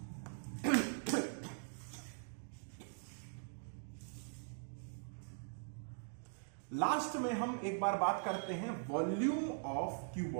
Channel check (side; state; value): left; silent; digital silence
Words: लास्ट में हम एक बार बात करते हैं वॉल्यूम ऑफ